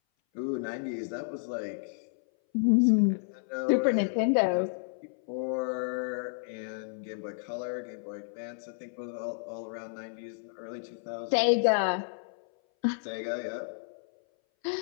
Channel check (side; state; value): right; silent; 57 dB below the other